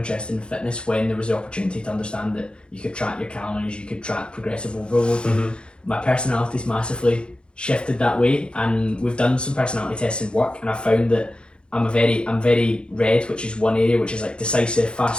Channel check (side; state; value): right; late; 0.054 ms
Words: in fitness when there was the opportunity to understand that you could track your calories, you could track progressive overload. My personality's massively shifted that way, and we've done some personality tests in work, and I found that I'm very red, which is one area, which is like decisive,